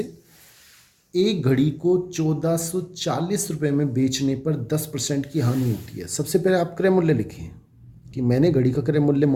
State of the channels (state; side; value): identical; both; correlation 1.00